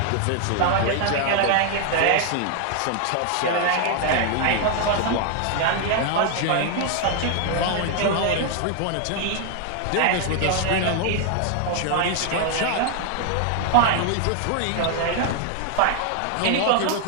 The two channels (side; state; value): both; different; correlation 0.00